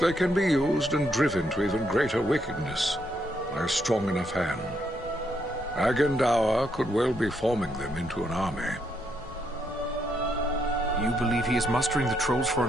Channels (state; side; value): normal; both; correlation 0.76